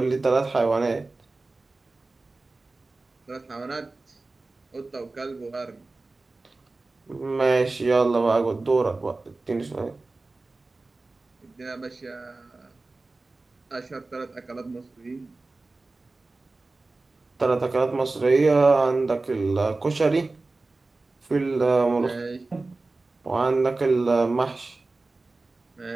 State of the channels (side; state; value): left; quieter; 3.4 dB